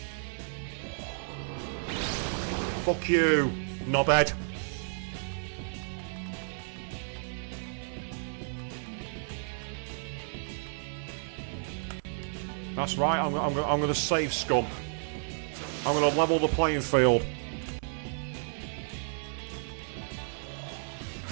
Fuck you, knobhead. That's right, I'm going to save scum. I'm going to level the playing field.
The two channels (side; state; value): left; silent; 57 dB below the other